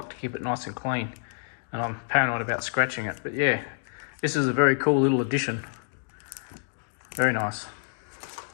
to keep it nice and clean, and I'm paranoid about scratching it. But yeah, this is a very cool little addition. Very nice.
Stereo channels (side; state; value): right; silent; digital silence